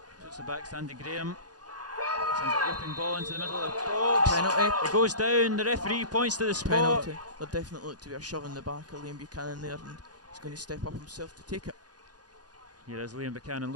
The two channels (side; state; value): left; late; 0.69 ms